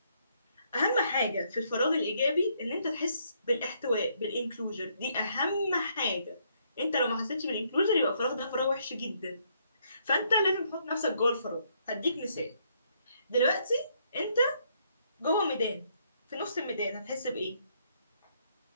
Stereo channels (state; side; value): inverted; both; correlation -0.71